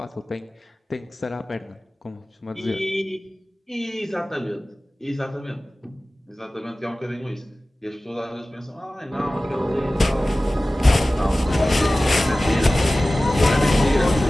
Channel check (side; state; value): both; normal; correlation 0.97